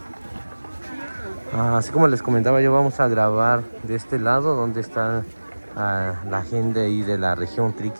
Así como les comentaba, yo vamos a grabar de este lado donde está la gente ahí de la región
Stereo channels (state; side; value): inverted; both; correlation -1.00